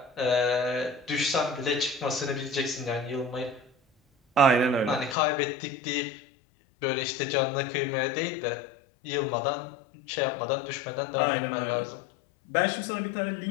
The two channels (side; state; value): right; drops out; at 5.2 s